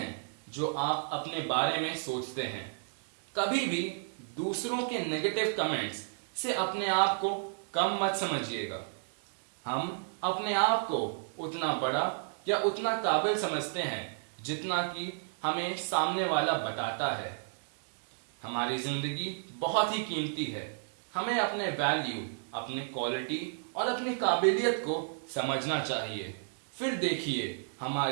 जो आप अपने बारे में सोचते हैं। कभी भी दूसरों के नेगेटिव कमेंट्स से अपने आप को कम मत समझिएगा। हम अपने आप को उतना बड़ा या उतना काबिल समझते हैं जितना कि हमें सामने वाला बताता है। हमारी जिंदगी बहुत ही कीमती है। हमें अपने वैल्यू, अपने क्वालिटी और अपनी काबिलियत को समझना चाहिए। फिर देखिए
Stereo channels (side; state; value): left; silent; digital silence